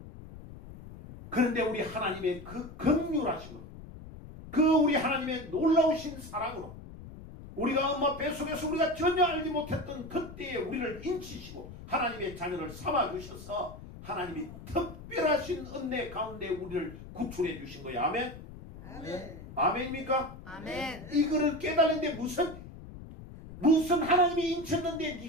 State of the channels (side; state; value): left; noise; rumble, 14 dB below the sound